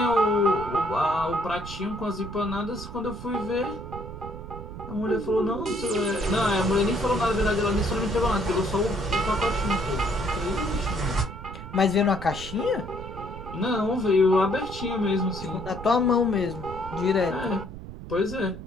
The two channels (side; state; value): right; noise; rumble, 12 dB below the sound